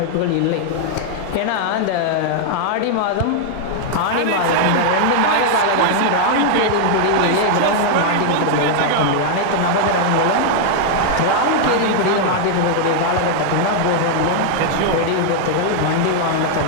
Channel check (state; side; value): different; both; correlation -0.01